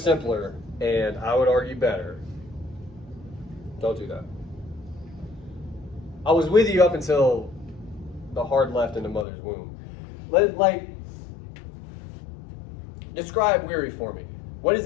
and I would argue better. Don't do that. I was with you up until the hard left in the mother's womb. Describe weary for me. What does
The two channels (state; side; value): drops out; right; at 9.2 s